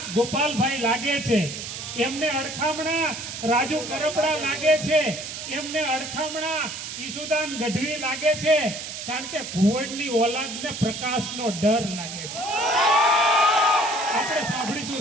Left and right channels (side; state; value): right; noise; hiss, 8 dB below the sound